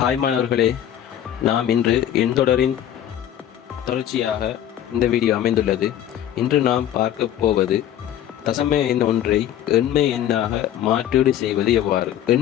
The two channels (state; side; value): quieter; right; 11.1 dB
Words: Hi மாணவர்களே, நாம் இன்று எண்தொடரின் தொடர்ச்சியாக இந்த வீடியோ அமைந்துள்ளது. இன்று நாம் பார்க்க போவது தசம எண் ஒன்றை எண்மை எண்ணாக மாற்றீடு செய்வது எவ்வாறு.